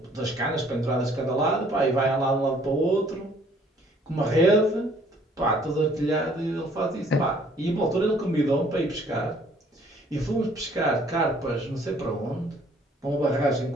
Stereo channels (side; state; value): both; normal; correlation 0.60